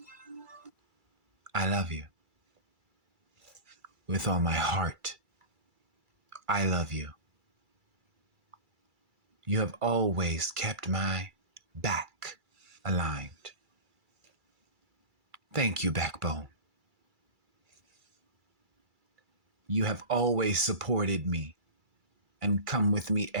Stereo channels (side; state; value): left; late; 2.3 ms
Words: I love you. With all my heart, I love you. You have always kept my back aligned. Thank you, backbone. You have always supported me and come with me